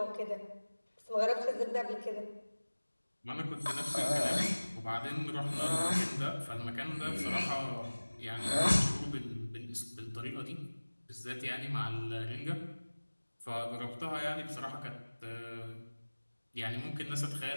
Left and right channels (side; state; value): both; inverted; correlation -1.00